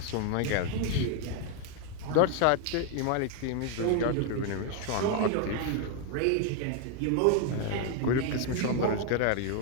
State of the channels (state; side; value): different; both; correlation 0.00